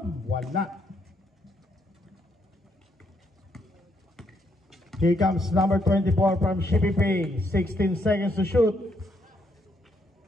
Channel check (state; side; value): normal; both; correlation 0.74